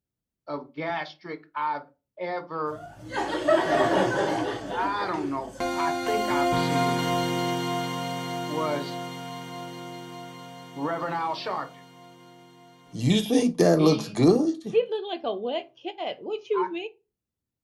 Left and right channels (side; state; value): both; identical; correlation 1.00